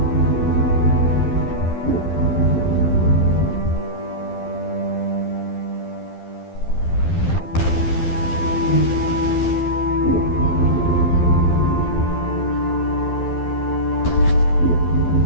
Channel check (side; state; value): right; late; 12 ms